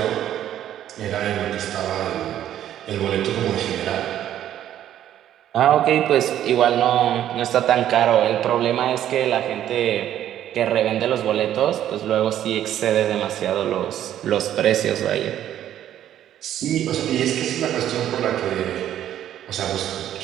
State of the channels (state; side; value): quieter; left; 11.4 dB